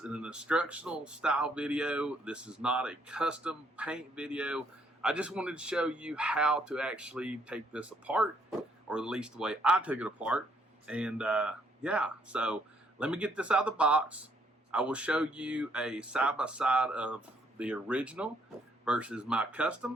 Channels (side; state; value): both; normal; correlation 0.69